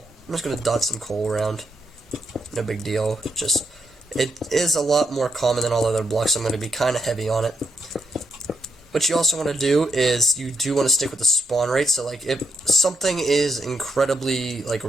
I'm just going to dot some coal around. No big deal. Just, it is a lot more common than all other blocks, so I'm going to be kind of heavy on it. What you also want to do is you do want to stick with the spawn rate. So like if something is incredibly like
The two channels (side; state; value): both; normal; correlation 0.80